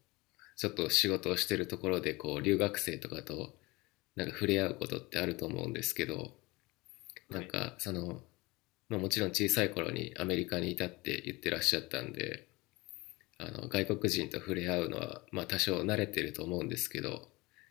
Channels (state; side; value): quieter; right; 22.8 dB